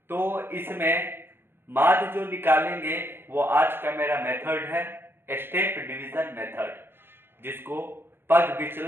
तो इसमें माध्य जो निकालेंगे वो आज का मेरा मेथड है स्टेप डिवीजन मेथड, जिसको पग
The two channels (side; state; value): left; late; 0.11 ms